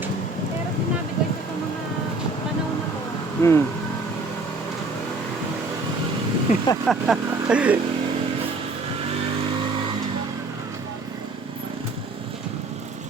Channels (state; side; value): quieter; left; 3.2 dB